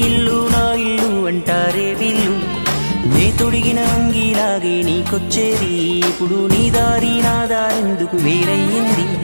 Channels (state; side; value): inverted; both; correlation -1.00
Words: ఇల్లు నా ఇల్లు అంటారే వీళ్ళు. నే తొడిగిన అంగీలాగే నీకొచ్చేది, ఇప్పుడు నీ దారి నా దారెందుకు వేరయ్యింది.